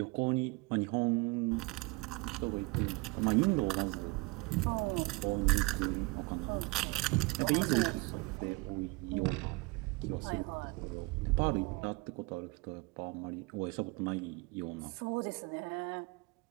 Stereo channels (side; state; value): left; quieter; 26.0 dB